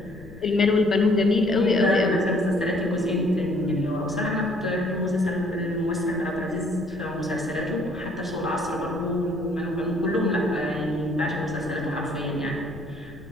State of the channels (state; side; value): noise; left; rumble, 18 dB below the sound